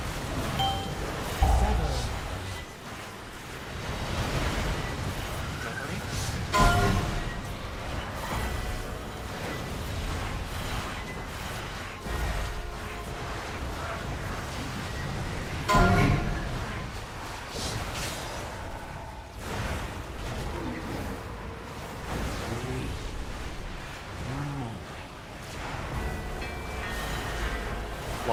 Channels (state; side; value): identical; both; correlation 1.00